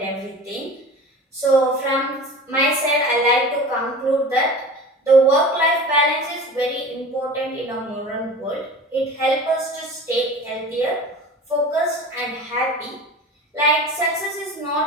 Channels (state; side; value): normal; both; correlation 0.36